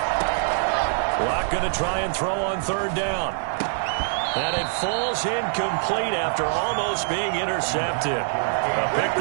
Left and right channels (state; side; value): silent; left; 55 dB below the other